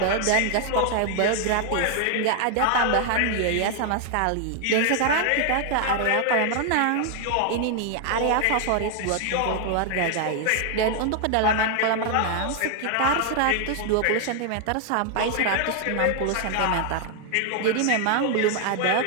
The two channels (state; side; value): different; both; correlation 0.00